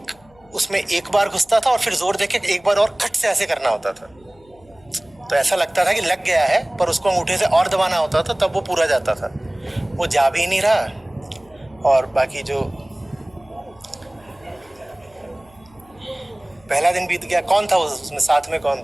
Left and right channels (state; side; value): noise; left; hum, 29 dB below the sound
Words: उसमें एक बार घुसता था और फिर जोर देके एक बार और खट से ऐसे करना होता था, तो ऐसा लगता था कि लग गया है, पर उसको अंगूठे से और दबाना होता था, तब वो पूरा जाता था। वो जा भी नहीं रहा। और बाकी जो पहला दिन बीत गया, कौन था उसमें साथ में, कौन